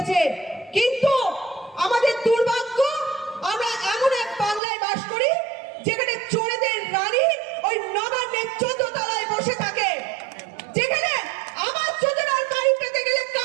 কিন্তু আমাদের দুর্ভাগ্য আমরা এমন এক বাংলায় বাস করি যেখানে চোরেদের রানী ওই নবান্নের 14 তলায় বসে থাকে, যেখানে আবাস যোজনার বাড়ি পেতে গেলে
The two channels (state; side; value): drops out; left; at 4.6 s